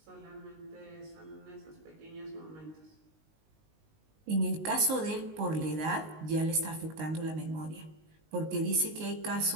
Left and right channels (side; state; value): left; late; 19 ms